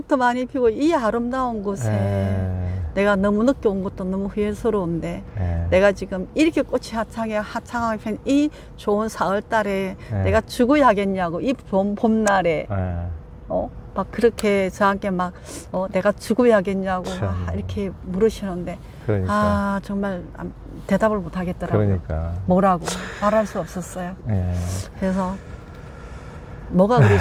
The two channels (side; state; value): both; identical; correlation 1.00